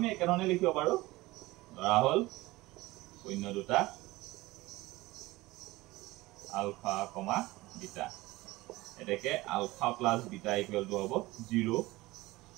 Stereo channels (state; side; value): quieter; left; 19.8 dB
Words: একেধৰণে লিখিব পাৰো ধৰা হল শূন্য দুটা আলফা কমা বিটা এটাকে alpha plus beta equal to হ'ব 0